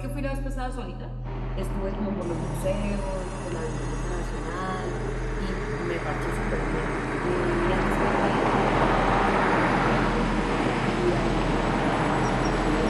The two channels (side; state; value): both; identical; correlation 1.00